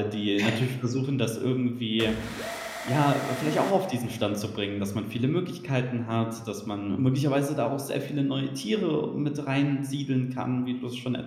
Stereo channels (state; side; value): identical; both; correlation 1.00